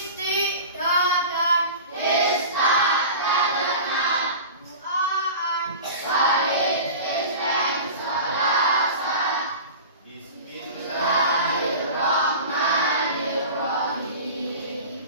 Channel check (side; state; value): both; inverted; correlation -0.35